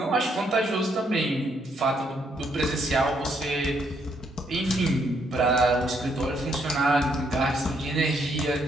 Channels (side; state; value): both; normal; correlation 0.73